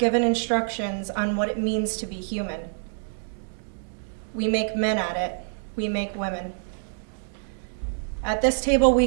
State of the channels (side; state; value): left; silent; 61 dB below the other